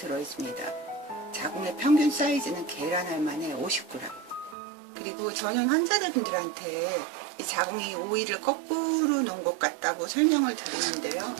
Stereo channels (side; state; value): left; drops out; at 4.5 s